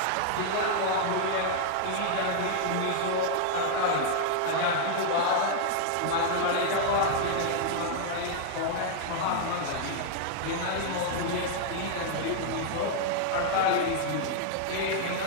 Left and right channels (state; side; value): different; both; correlation -0.01